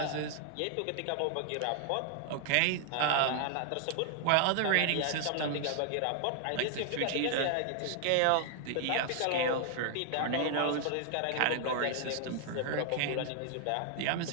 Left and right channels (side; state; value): both; different; correlation 0.00